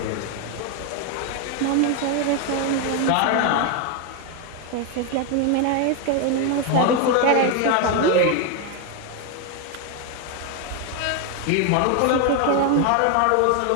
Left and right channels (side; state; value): both; different; correlation 0.01